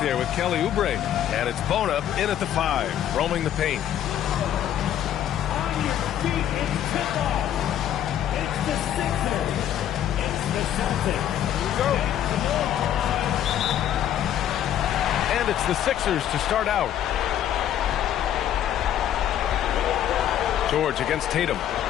with Kelly Oubre. And it's Bona in at the 5, roaming the paint. On your feet, it's tip-off. It's the Sixers. It's the Celtics. Here we go. And it's the Sixers to start out. George against Tatum.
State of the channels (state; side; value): quieter; right; 10.8 dB